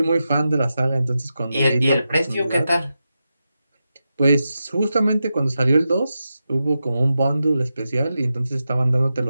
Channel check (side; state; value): both; inverted; correlation -0.90